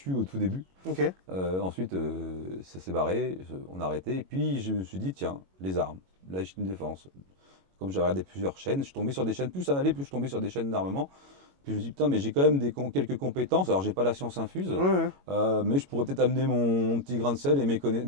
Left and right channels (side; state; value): left; late; 22 ms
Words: au tout début. Ok. Ensuite, ça s'est barré, on a arrêté. Et puis je me suis dit, tiens, les armes, la légitime défense. Comme j'avais regardé plusieurs chaînes, je suis tombé sur des chaînes, plus ça allait, plus je tombais sur des chaînes d'armement. Puis je me suis dit, putain, mais j'ai quand même quelques compétences. Alors j'ai pas la science infuse, Ouais, ouais. mais je pourrais peut-être amener mon petit grain de sel et